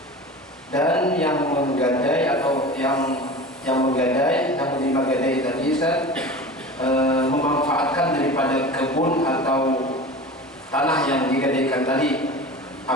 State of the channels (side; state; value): both; normal; correlation 0.34